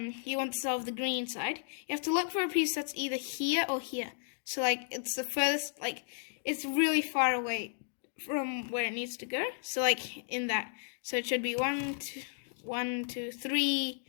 want to solve the green side. You have to look for a piece that's either here or here. So it's the furthest, it's really far away from where it needs to go. So in that. So it should be 1, 2, 3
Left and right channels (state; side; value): silent; right; digital silence